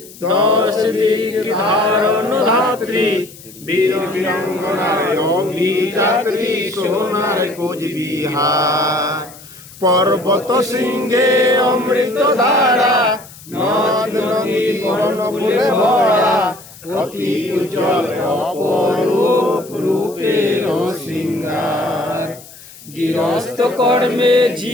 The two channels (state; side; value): noise; left; hiss, 20 dB below the sound